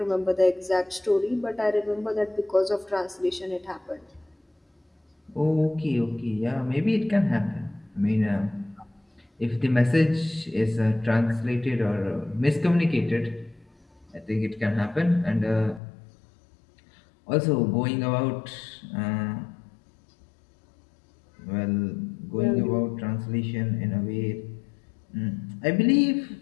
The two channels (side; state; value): right; drops out; at 15.8 s